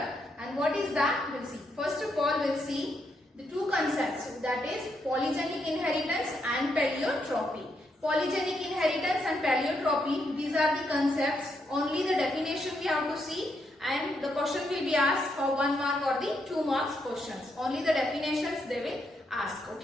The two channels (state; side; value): normal; both; correlation 0.79